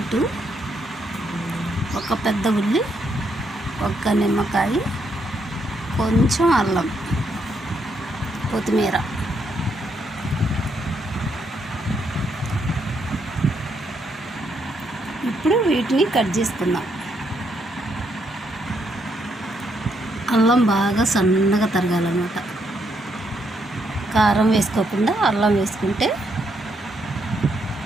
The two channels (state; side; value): normal; both; correlation 0.76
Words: ఒక పెద్ద ఉల్లి, ఒక్క నిమ్మకాయ, కొంచెం అల్లం, కొత్తిమీర. ఇప్పుడు వీటిని కట్ చేసుకుందాం. అల్లం బాగా సన్నగా తరగాలన్నమాట. కారం వేసుకోకుండా అల్లం వేసుకుంటే